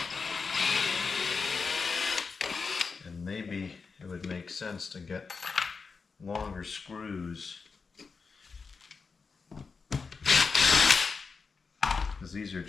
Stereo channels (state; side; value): quieter; right; 4.9 dB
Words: And maybe it would make sense to get longer screws, because these are